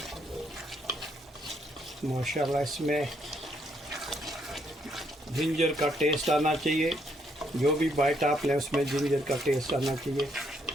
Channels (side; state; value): both; normal; correlation 0.73